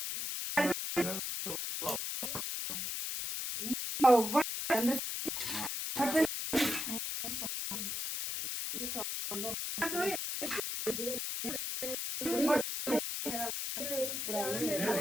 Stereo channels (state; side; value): noise; left; hiss, 3 dB below the sound